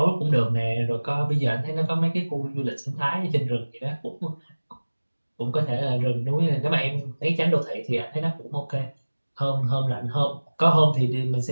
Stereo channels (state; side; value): inverted; both; correlation -1.00